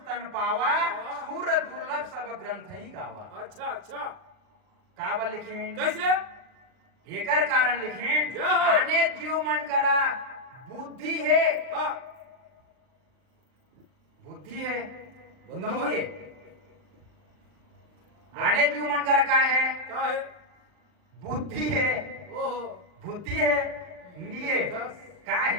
तन पावा सूर दुर्लभ सब ग्रंथ ही गावा अच्छा अच्छा काबल लिखें कैसे एकर कारण लिखें जय हो। आने जीव मन करा बुद्धि है हाँ बुद्धि है बता नहीं भाई। है। आने जीव मन करा का है क्या है बुद्धि है ओहो बुद्धि है लिए दस। का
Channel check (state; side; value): late; left; 39 ms